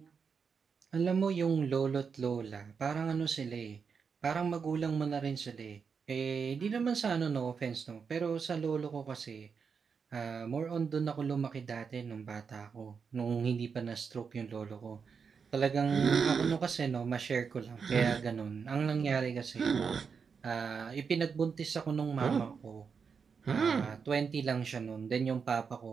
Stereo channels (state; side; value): quieter; left; 5.9 dB